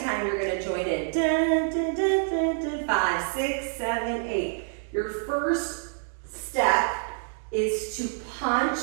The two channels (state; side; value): silent; left; digital silence